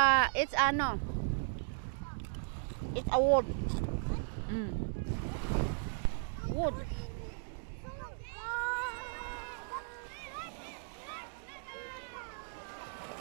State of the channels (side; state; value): left; silent; digital silence